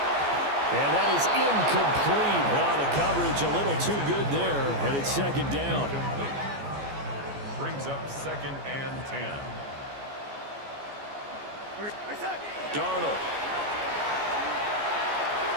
And that is incomplete. Now the coverage a little too good there, and it's second down. Brings up 2nd and 10. Darnold.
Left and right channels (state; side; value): late; left; 14 ms